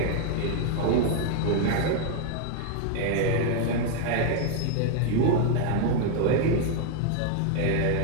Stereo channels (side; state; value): both; different; correlation 0.00